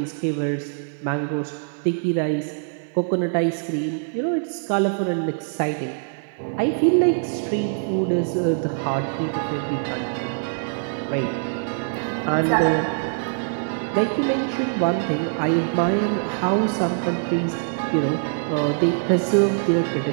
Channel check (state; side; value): silent; left; 57 dB below the other